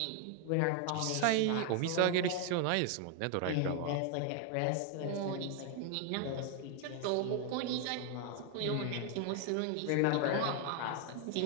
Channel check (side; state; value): both; different; correlation 0.00